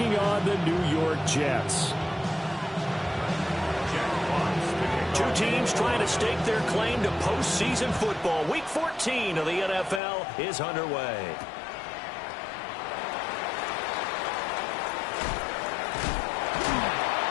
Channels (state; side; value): drops out; right; at 10.0 s